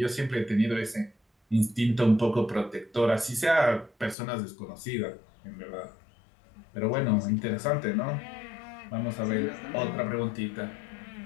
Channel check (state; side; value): drops out; right; at 4.2 s